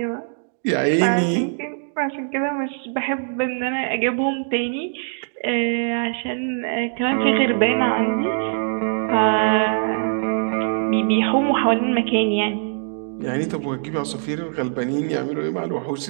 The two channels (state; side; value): silent; left; digital silence